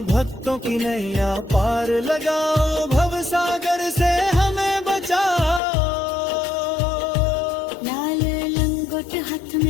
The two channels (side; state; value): right; drops out; at 5.6 s